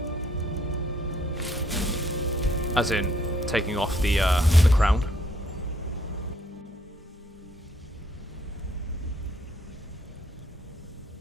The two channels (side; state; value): both; normal; correlation 0.67